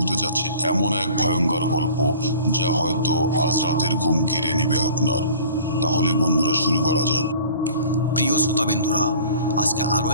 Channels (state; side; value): inverted; both; correlation -0.47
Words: যাচ্ছে এমন এক ভয়ঙ্কর গল্প যা হয়তো আজ রাতের ঘুম কেড়ে নেবে আপনার। তাহলে বন্ধুরা, শুরু করা যাক। প্রিয় শ্রোতাবিন্দুরা, আজকে আরও